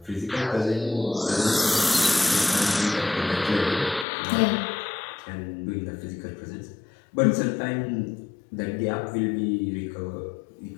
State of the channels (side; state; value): right; drops out; at 4.0 s